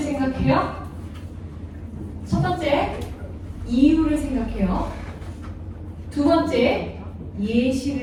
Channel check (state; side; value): identical; both; correlation 1.00